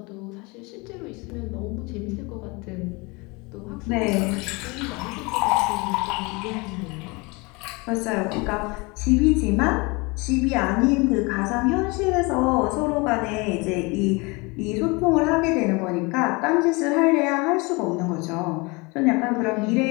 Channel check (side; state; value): right; quieter; 26.9 dB